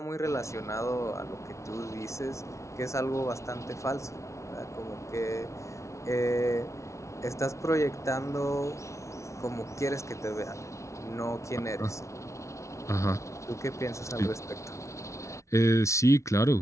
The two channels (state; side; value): late; right; 0.14 ms